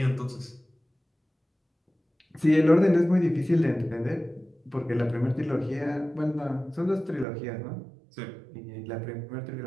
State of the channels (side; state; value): left; drops out; at 7.2 s